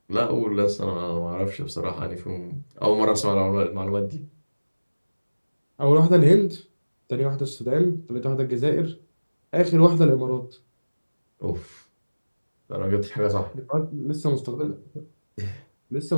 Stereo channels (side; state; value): both; inverted; correlation -1.00